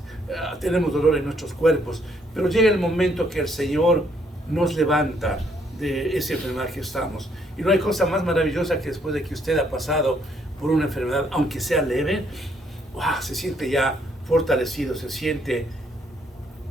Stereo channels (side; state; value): both; normal; correlation 0.69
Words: tenemos dolor en nuestros cuerpos, pero llega el momento que el Señor nos levanta de esa enfermedad que estamos. Y no hay cosa más maravillosa que después de que usted ha pasado por una enfermedad, aunque sea leve, ¡wow!, se siente ya fortalecido, se siente